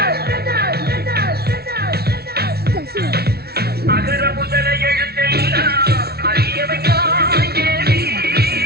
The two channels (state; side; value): late; left; 0.46 ms